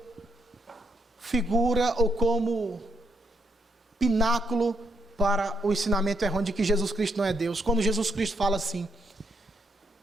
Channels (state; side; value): normal; both; correlation 0.76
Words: figura ou como pináculo para o ensinamento errôneo de que Jesus Cristo não é Deus. Quando Jesus Cristo fala assim: